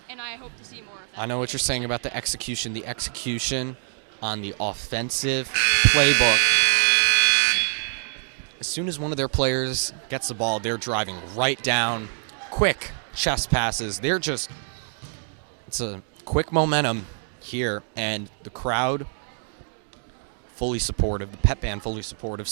and I hope to see more of that. I know what you're saying about the half. execution. The execution on the offensive playbook. As soon as one of their players gets the ball, they're driving right down. Quick chest passes. It's a quick momentum here, and the crowd fully supportive, the pep band fully supportive,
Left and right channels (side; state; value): left; silent; 62 dB below the other